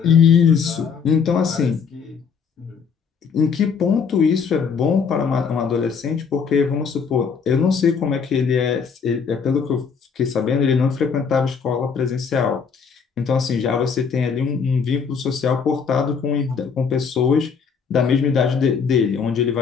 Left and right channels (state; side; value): quieter; right; 6.1 dB